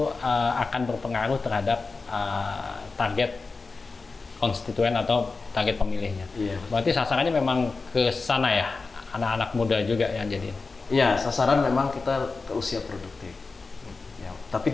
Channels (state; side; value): quieter; right; 4.1 dB